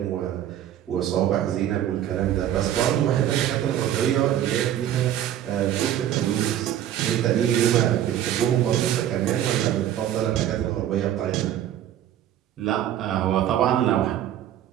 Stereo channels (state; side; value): quieter; left; 11.3 dB